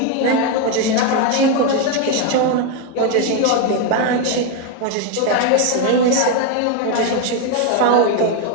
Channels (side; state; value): both; different; correlation 0.02